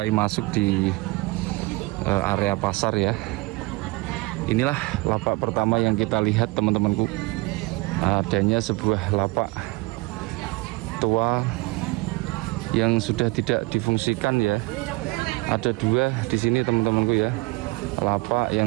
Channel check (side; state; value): left; quieter; 24.5 dB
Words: masuk di area pasar ya. Inilah lapak pertama yang kita lihat teman-temanku. Adanya sebuah lapak tua yang sudah tidak difungsikan ya. Ada dua di sini teman-temanku ya. Lapak